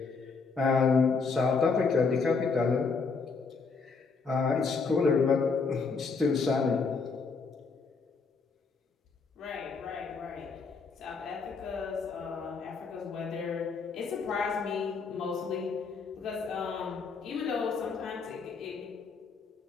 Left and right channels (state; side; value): quieter; right; 4.8 dB